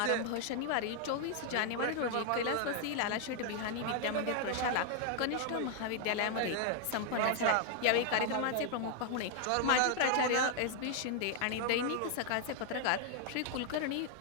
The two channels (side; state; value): both; different; correlation 0.00